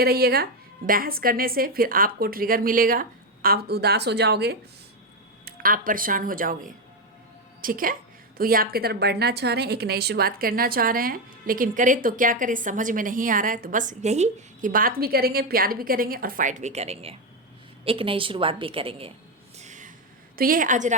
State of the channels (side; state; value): both; normal; correlation 0.08